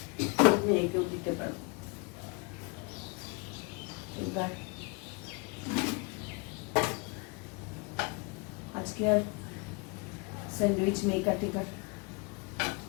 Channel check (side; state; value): right; quieter; 31.0 dB